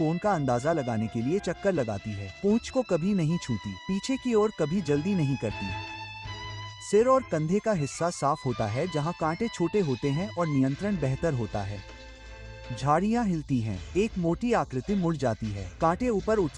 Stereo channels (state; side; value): identical; both; correlation 1.00